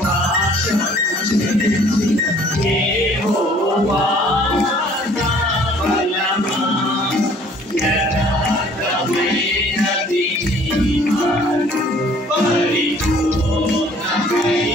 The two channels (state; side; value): normal; both; correlation 0.56